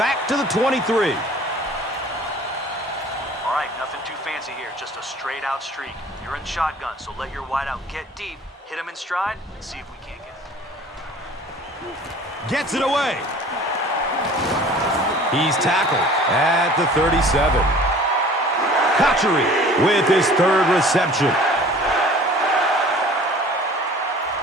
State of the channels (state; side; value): normal; both; correlation 0.47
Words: to the 23. All right, nothing too fancy here, just a straight-out streak. You're in shotgun, so let your wideout get deep, hit him in stride, and see if we can't get it. Gets it away. He's tackled at the 37. Kachary with his 3rd reception.